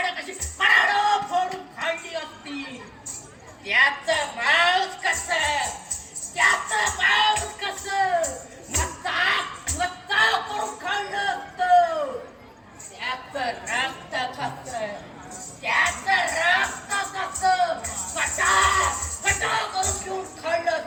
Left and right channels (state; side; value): identical; both; correlation 1.00